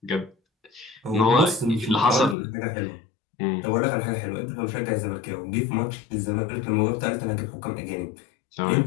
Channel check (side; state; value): right; drops out; at 2.4 s